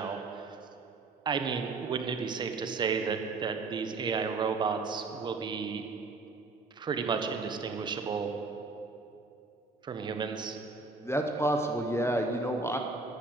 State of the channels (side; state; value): left; quieter; 3.7 dB